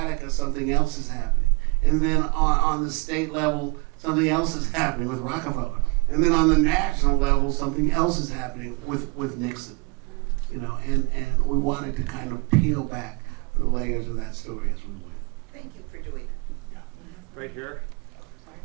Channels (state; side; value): quieter; left; 29.5 dB